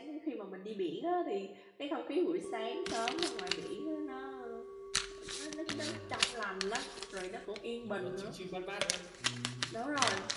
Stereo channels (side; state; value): both; identical; correlation 1.00